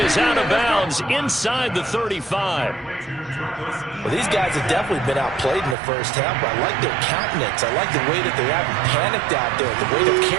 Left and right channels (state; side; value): drops out; left; at 5.8 s